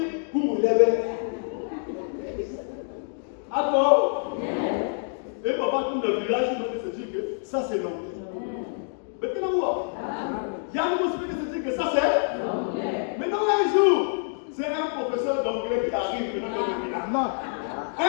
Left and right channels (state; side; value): silent; right; digital silence